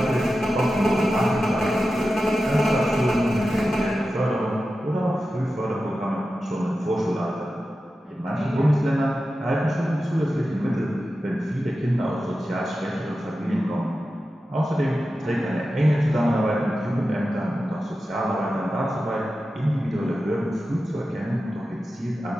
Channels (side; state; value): both; normal; correlation 0.92